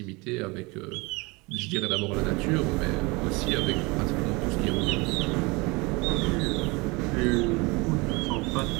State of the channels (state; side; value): quieter; left; 25.8 dB